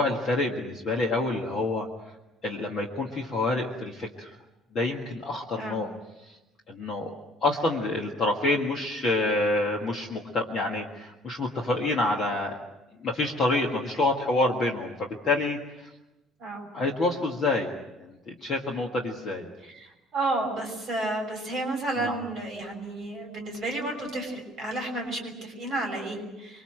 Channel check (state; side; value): normal; both; correlation 0.54